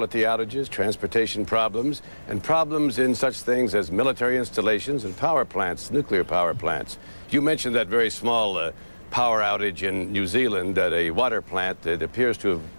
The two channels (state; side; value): inverted; both; correlation -1.00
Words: outages, transportation problems, and problems in such things as military installations and power plants, nuclear power plants. You mentioned that very small power outage in New Zealand at a water plant that appears to